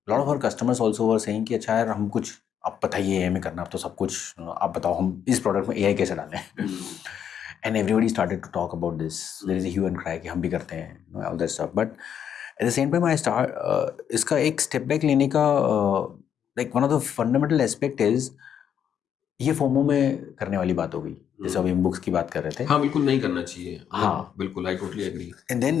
a lot of our customers also were saying कि अच्छा यार हम कुछ आप बताइए AI में करना, अब तो सब कुछ आप बताओ हम इस प्रोडक्ट में AI कैसे डालें. And everybody started to talk about this. There is a hue and cry कि हम भी करते हैं, all that stuff. But at the same time I start इसका एक step back लेने का like one of the fundamental aspect is ये फोमो में करने वाली बात हो गई, जैसे अभी हम बुक्स की बात कर रहे थे. हाँ बिल्कुल नहीं करना चाहिए. हाँ बिल्कुल, I totally agree. And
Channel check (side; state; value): right; quieter; 8.7 dB